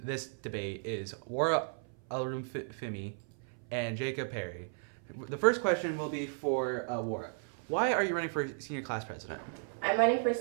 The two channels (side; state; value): left; silent; 55 dB below the other